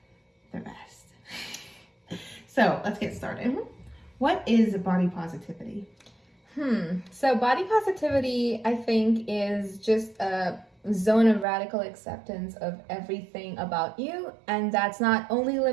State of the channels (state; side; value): drops out; left; at 11.5 s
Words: the rest. So let's get started. Mm-hmm. What is body positivity? So body positivity, I think, is just a zone of radical acceptance of everything about you, and that's not only